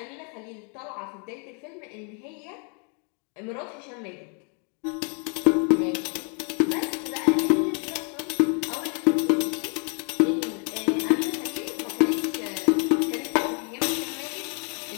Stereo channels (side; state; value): right; quieter; 37.8 dB